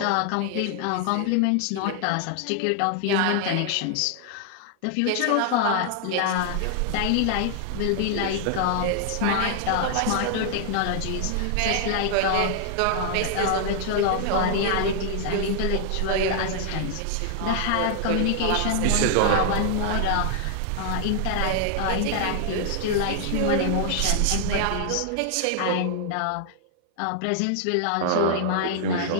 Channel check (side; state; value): both; different; correlation 0.00